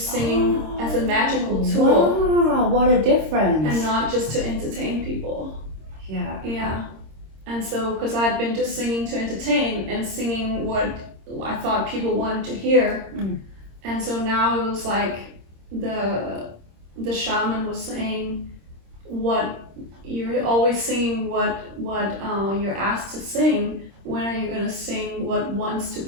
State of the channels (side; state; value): left; late; 26 ms